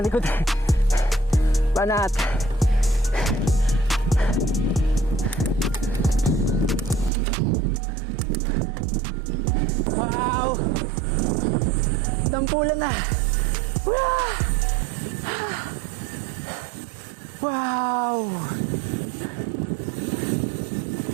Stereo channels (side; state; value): left; drops out; at 7.1 s